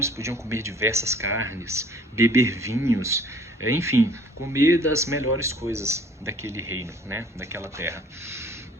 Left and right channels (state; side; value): normal; both; correlation 0.54